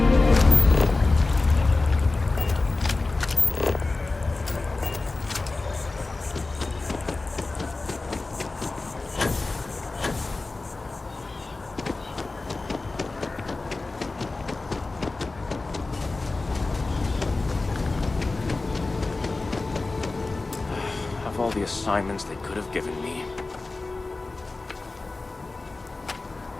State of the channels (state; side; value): quieter; right; 3.4 dB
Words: all the assignments they could have given me.